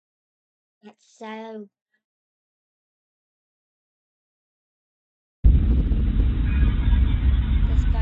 That's so. This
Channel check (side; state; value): both; identical; correlation 1.00